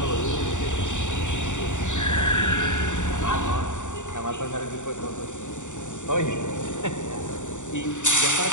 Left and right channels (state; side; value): late; right; 0.85 ms